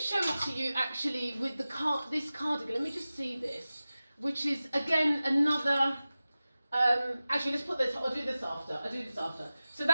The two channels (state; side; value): inverted; both; correlation -0.96